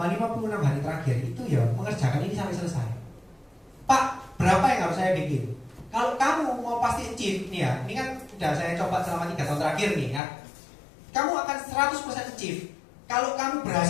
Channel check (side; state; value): right; drops out; at 10.2 s